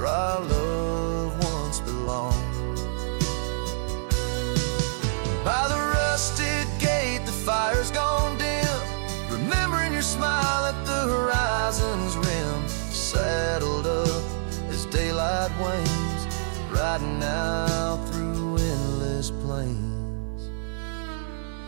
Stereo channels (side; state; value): left; silent; 59 dB below the other